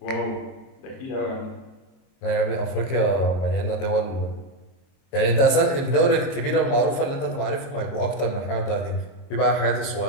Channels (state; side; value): late; right; 22 ms